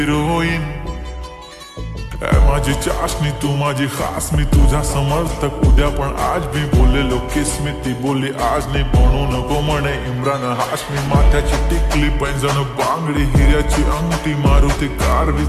माझी चाशनी तू माझी खास, मी तुझा समर्थक उद्या पण आज मी बोललेलो किस मी. ती बोलली आज नाही बनू नको म्हणे इम्रान हाशमी. माथ्याची टिकली पैंजण बांगडी हिऱ्याची अंगठी, मारुती कारवी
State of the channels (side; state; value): both; identical; correlation 1.00